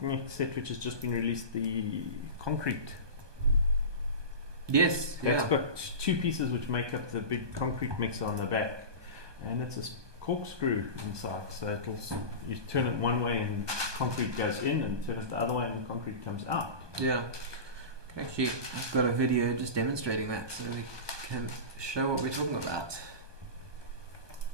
set which has just been released, the concrete. Yes. It's got 2 pieces which make up the big concrete mixer on the back, and it's a corkscrew inside. So you turn it one way and concrete goes in, and turn it the other way and the concrete comes out. Yeah. Actually, I've got a video just demonstrating that, so we can show what we're talking about.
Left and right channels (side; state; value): left; late; 1.2 ms